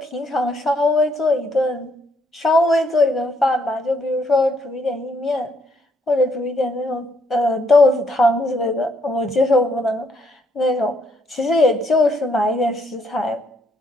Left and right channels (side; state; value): both; normal; correlation 0.71